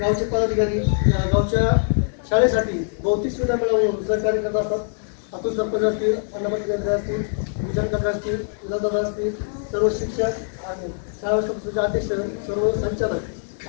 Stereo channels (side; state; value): right; silent; 60 dB below the other